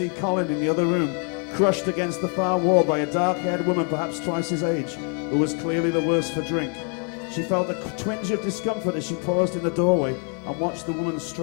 Colin in the other room, crushed against the far wall by a dark-haired woman perhaps twice his age, who was clearly the worse for drink. She felt a twinge of discomfort as she paused in the doorway and watched the woman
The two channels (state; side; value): quieter; right; 39.5 dB